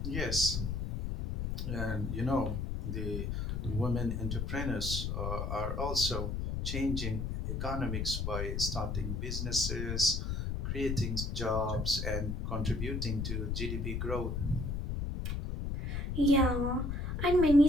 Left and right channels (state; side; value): noise; left; rumble, 2 dB below the sound